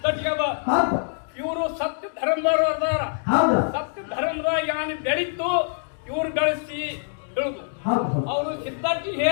ಅದ ಇವರು ಸತ್ಯ ಧರ್ಮದವರು ಅದಾರ ಸತ್ಯ ಧರ್ಮದಾಗ ಯಾನ್ ಬೆಳೀತು ಇವ್ರು ಗಳಿಸಿ ಹೇಳುದು ಅವರು ಸಿದ್ಧಟಿ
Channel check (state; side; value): silent; right; digital silence